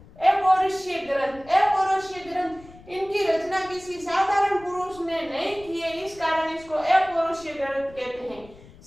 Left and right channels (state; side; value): noise; left; rumble, 22 dB below the sound